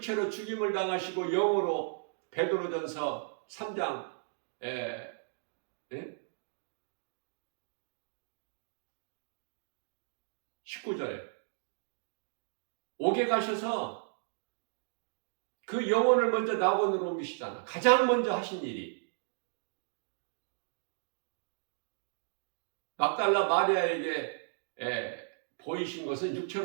죽임을 당하시고 영으로 베드로전서 3장 19절에 옥에 가셔서 그 영혼을 먼저 낙원으로 옮기시잖아. 가장 먼저 하신 일이 막달라 마리아에게 보이신 것은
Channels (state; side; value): silent; left; digital silence